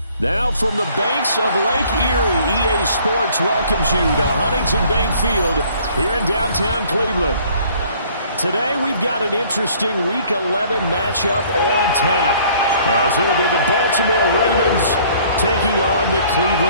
Now from the banks of Lake Erie, EA Sports welcomes you to Huntington Bank Field here in downtown Cleveland. Today we've got an interesting Week 11 matchup on tap, as it'll be the Baltimore Ravens taking on the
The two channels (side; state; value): both; inverted; correlation -0.57